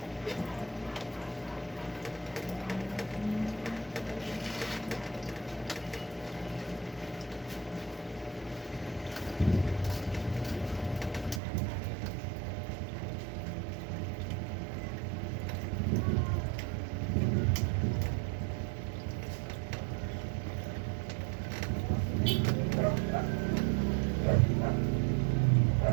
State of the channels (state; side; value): drops out; left; at 11.4 s